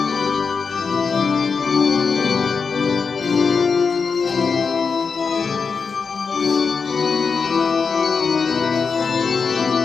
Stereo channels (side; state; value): right; quieter; 5.3 dB